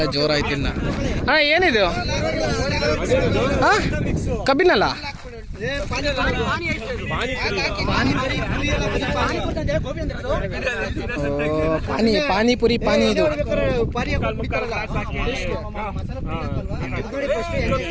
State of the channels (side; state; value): both; identical; correlation 1.00